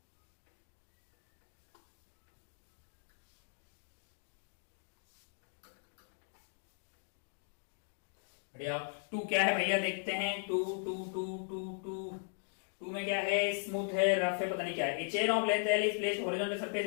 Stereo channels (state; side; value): silent; right; digital silence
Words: बढ़िया, 2 क्या है भैया, देखते हैं 2 2 2 2 2 2 में क्या है, स्मूथ है, रफ है, पता नहीं क्या है। A chain of length L is placed horizontal surface